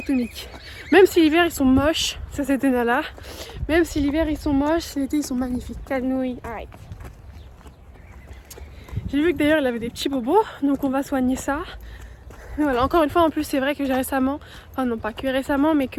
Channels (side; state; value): both; identical; correlation 1.00